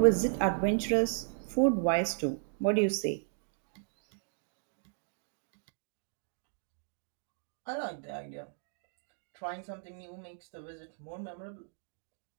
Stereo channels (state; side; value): silent; left; digital silence